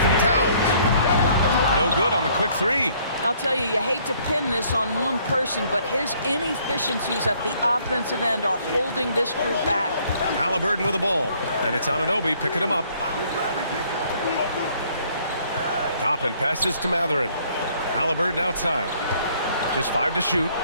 Towns. No good on the quick three. I'll tell you, you hate to pin this on one person, but his inefficiencies at the offensive end are holding this group back. Halliburton with the ball, and it's Anunoby picking him up. Toppin passes to Matherin. Halliburton outside. Just 5 to shoot.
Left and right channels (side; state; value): both; inverted; correlation -0.63